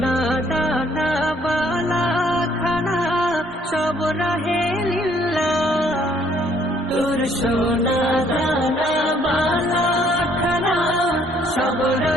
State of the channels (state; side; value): normal; both; correlation 0.64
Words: দানা বালা খানা সব রাহে লিল্লাহ। তোর সোনা দানা বালা খানা সব